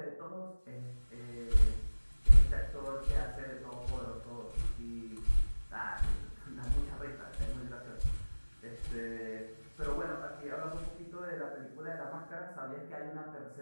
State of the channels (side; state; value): both; inverted; correlation -1.00